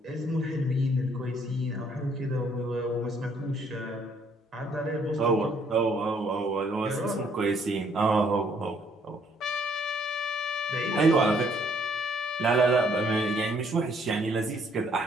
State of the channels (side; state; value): both; normal; correlation 0.66